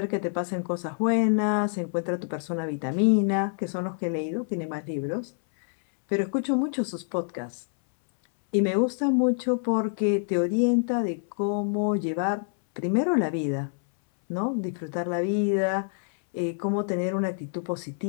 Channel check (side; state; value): right; silent; 60 dB below the other